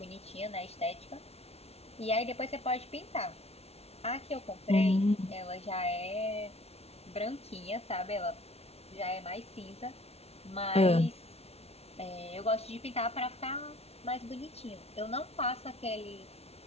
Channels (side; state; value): right; late; 0.30 ms